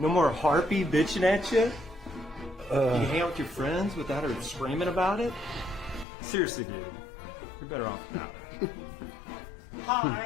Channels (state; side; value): drops out; right; at 6.1 s